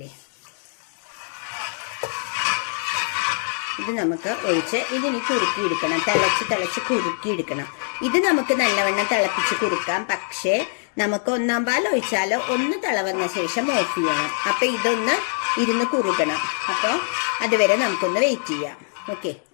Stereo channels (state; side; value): silent; right; digital silence